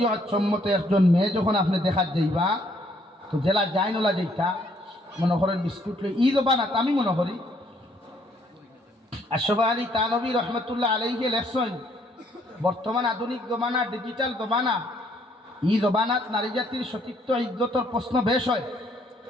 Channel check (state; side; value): normal; both; correlation 0.66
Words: সম্মত একজন মেয়ে যখন আপনি দেখার যাইবা, তো জেলা যাই নলা যাইতা, মনে করেন বিস্কুট লই ঈদ বানাত, আমি মনে করি আশরাফ আলী তানভী রহমতুল্লাহ আলাইহি লেখছেন, বর্তমান আধুনিক জমানা, ডিজিটাল জমানা, ই জবানাত নারী জাতির সতীত্ব ইজ্জতর প্রশ্ন বেশ হয়।